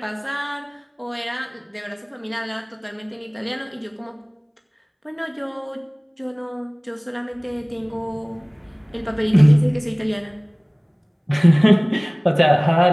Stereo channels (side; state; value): both; identical; correlation 1.00